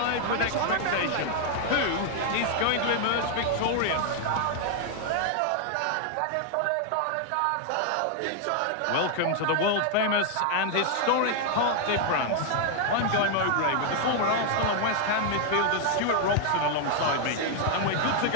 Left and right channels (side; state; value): both; different; correlation 0.00